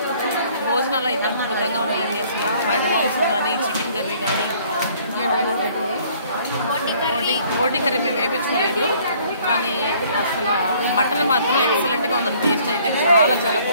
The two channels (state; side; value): inverted; both; correlation -0.58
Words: భోజనాలు అయితే అద్భుతంగా ఉన్నాయండి. అసలు వైట్ మాంసం కానీ, చికెన్ కర్రీ కానీ, బోటి కర్రీ మేము వేయించుకోలేదు, కానీ అసలు మటన్ మాత్రం ఎక్సలెంట్గా ఉందండి. టేస్ట్ అయితే చాలా చాలా